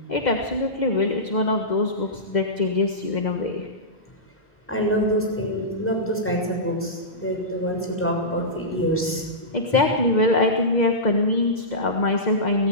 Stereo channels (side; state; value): both; normal; correlation -0.16